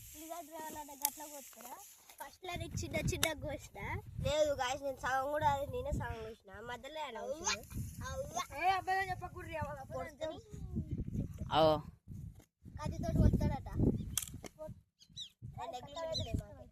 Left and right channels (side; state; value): both; identical; correlation 1.00